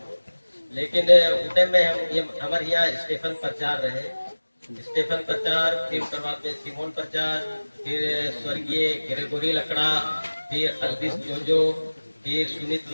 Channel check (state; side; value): inverted; both; correlation -1.00